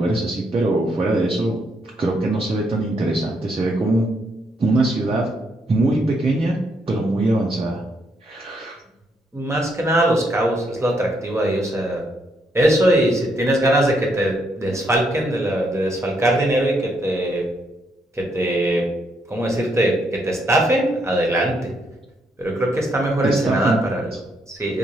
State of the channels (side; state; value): both; normal; correlation 0.75